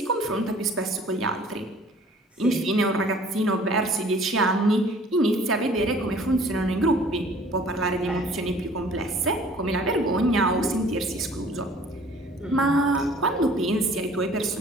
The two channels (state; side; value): normal; both; correlation 0.52